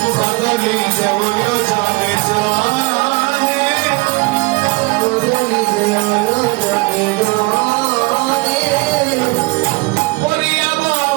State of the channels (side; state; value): left; quieter; 25.7 dB